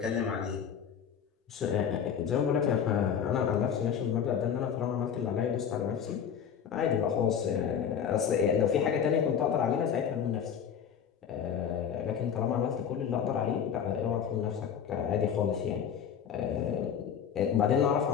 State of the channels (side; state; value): right; quieter; 8.0 dB